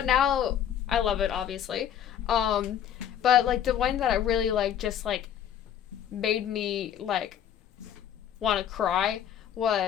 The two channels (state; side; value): quieter; right; 9.6 dB